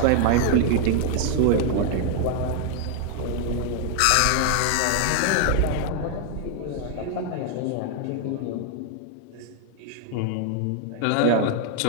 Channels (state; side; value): different; both; correlation 0.00